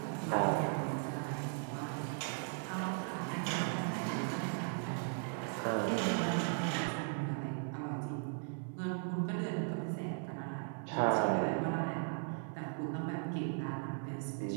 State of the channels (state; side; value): silent; left; 53 dB below the other